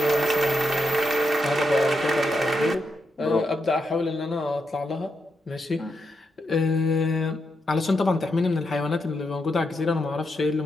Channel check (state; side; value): normal; both; correlation 0.83